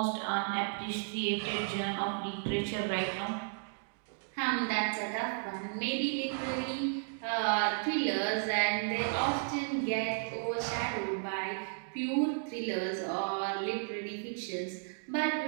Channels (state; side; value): silent; left; digital silence